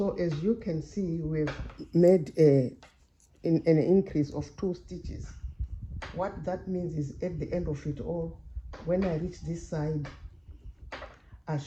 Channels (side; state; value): both; identical; correlation 1.00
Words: as you can see, we've made an increase of 2 stitches. What that means is at the end of it all, when I reach this side, I